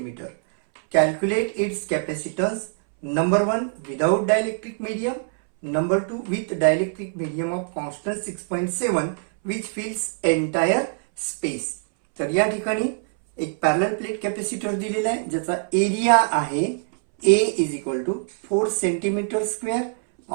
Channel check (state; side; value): silent; left; 63 dB below the other